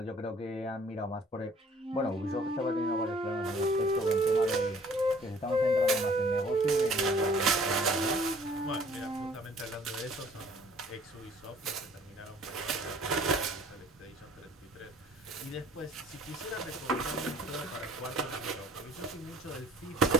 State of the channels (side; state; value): both; normal; correlation 0.55